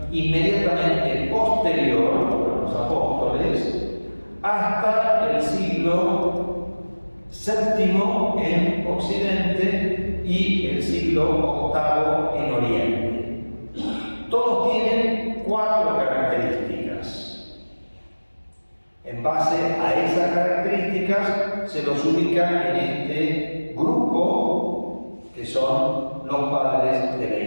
inmediatamente posterior a los apóstoles, hasta el siglo VII en Occidente y el siglo VIII en Oriente. Todos tienen 4 características. En base a esas características se los ubica en este grupo que son los padres de la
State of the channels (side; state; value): both; inverted; correlation -1.00